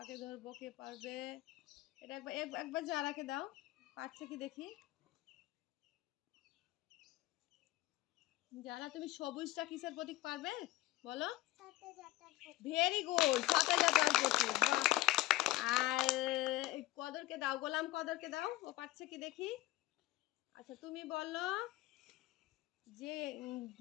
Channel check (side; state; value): right; quieter; 17.6 dB